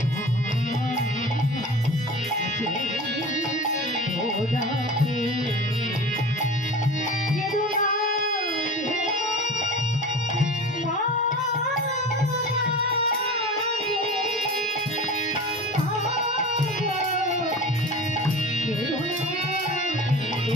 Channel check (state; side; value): normal; both; correlation 0.34